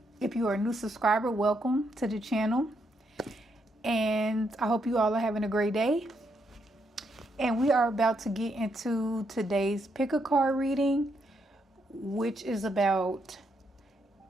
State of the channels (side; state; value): both; normal; correlation 0.78